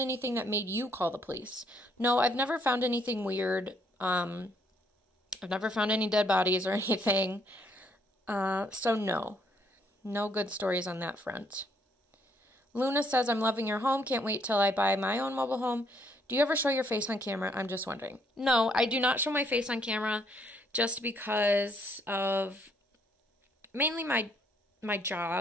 anything that made you call the police? No, I've never found anything weird. I've never found any dead bodies or anything. So no. No good stories on that front. Luna says, I'm loving your home. Can't wait till I buy my own mobile home. Do you ever show your face on camera? I'm just wondering. No, I do not show my face on camera just because of mainly my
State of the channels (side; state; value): both; normal; correlation 0.69